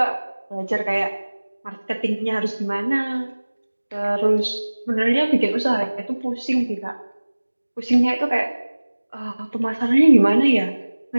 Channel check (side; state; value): both; inverted; correlation -1.00